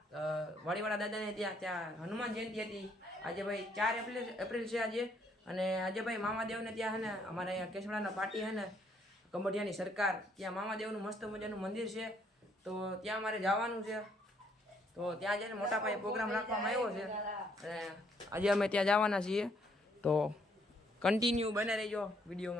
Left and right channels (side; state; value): both; normal; correlation 0.68